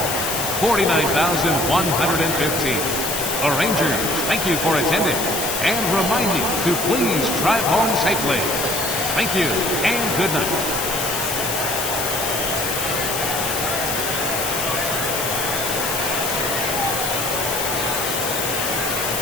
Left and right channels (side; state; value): left; noise; hiss, 2 dB below the sound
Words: 49,115. The Rangers thank you for attending and remind you to please drive home safely. Thank you and good night.